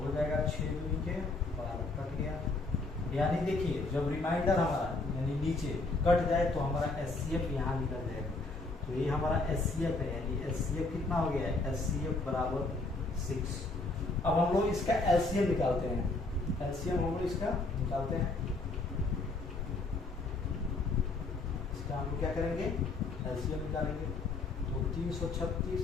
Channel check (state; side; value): quieter; right; 3.3 dB